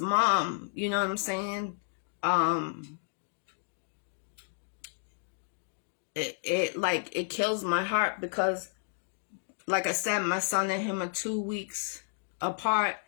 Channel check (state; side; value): silent; right; digital silence